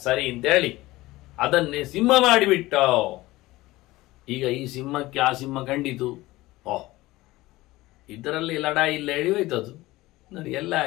ಸರಿ ಅಂತೇಳಿ ಅದನ್ನೇ ಸಿಂಹ ಮಾಡಿಬಿಟ್ಟ. ಈಗ ಈ ಸಿಂಹಕ್ಕೆ ಆ ಸಿಂಹ ಕಂಡಿತು, ಓಹ್ ಇದರಲ್ಲಿ ಲಡಾಯಿ ಇಲ್ಲ, ಎಳಿಯೋಯ್ತದು ನೋಡಿ, ಎಲ್ಲ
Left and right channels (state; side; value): quieter; right; 18.7 dB